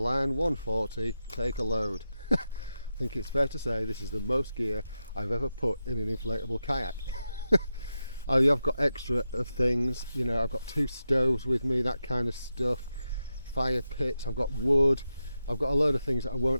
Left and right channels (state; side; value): inverted; both; correlation -0.89